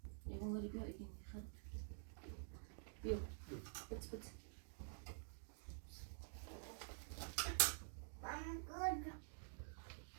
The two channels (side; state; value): left; silent; digital silence